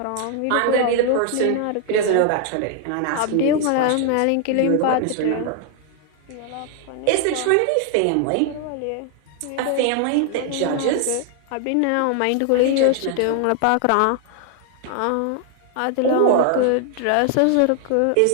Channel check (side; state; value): both; different; correlation 0.00